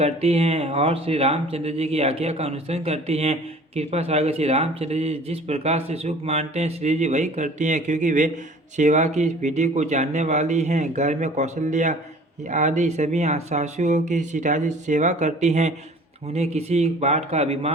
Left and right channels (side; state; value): both; normal; correlation 0.48